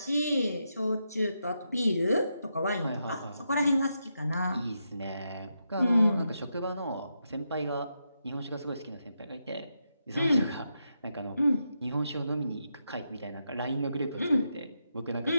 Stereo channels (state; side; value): inverted; both; correlation -0.84